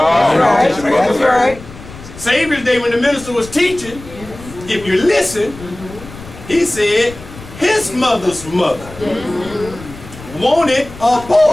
right. Savior's Day, when the minister was teaching, if you listen, he said his mother's mother wanted a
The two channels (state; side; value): noise; left; rumble, 16 dB below the sound